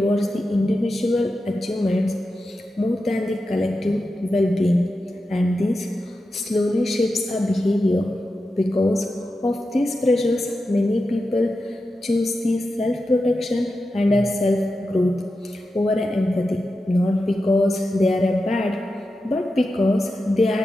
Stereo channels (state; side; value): normal; both; correlation 0.90